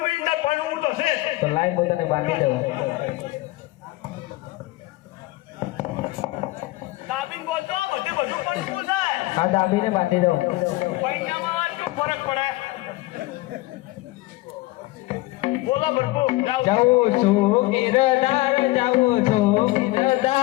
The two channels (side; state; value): right; quieter; 19.9 dB